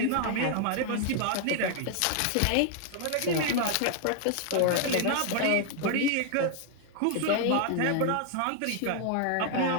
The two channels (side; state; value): both; different; correlation 0.00